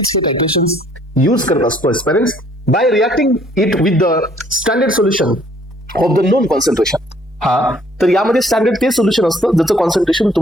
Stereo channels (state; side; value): normal; both; correlation 0.61